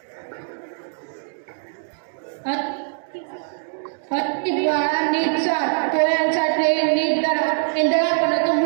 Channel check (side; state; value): left; silent; digital silence